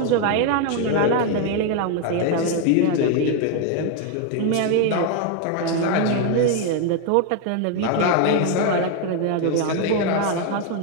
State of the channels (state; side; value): different; both; correlation 0.01